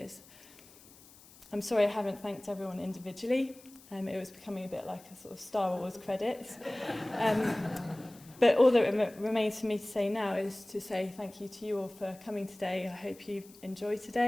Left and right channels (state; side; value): noise; left; hiss, 23 dB below the sound